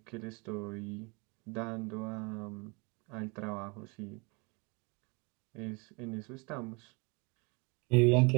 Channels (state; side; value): quieter; left; 30.1 dB